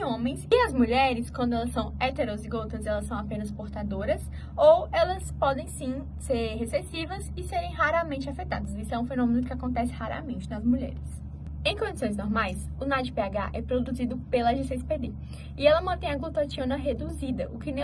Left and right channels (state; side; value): identical; both; correlation 1.00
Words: homens. E as mulheres, quando elas são heterozigotas, elas são apenas portadoras, ou elas podem sim ser recessivas e serem raramente afetadas. Isso é um fenômeno que acontece raramente nas mulheres. Em condições normais, o NADPH é produzido pela G6PD e ela mantém a glutationa reduzida, o que